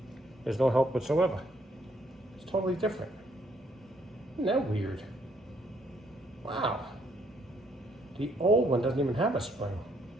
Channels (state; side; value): normal; both; correlation 0.69